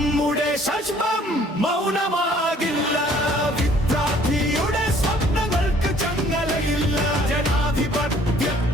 ശാശ്വതം മൗനമാകില്ല. വിദ്യാർത്ഥിയുടെ സ്വപ്നങ്ങൾക്ക് ചങ്ങലയില്ല,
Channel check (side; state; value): both; normal; correlation 0.58